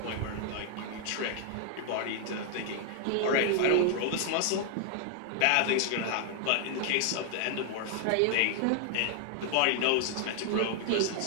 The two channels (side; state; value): both; different; correlation 0.00